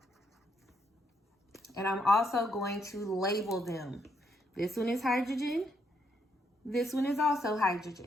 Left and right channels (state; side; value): normal; both; correlation 0.75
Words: And I'm also going to label them. This one is hydrogen. This one is also